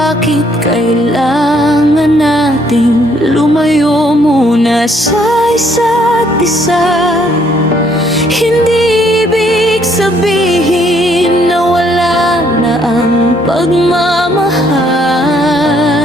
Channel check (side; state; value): both; normal; correlation 0.67